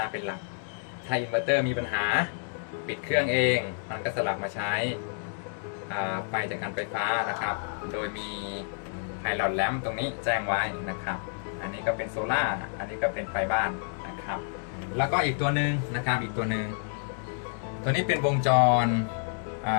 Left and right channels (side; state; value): right; silent; digital silence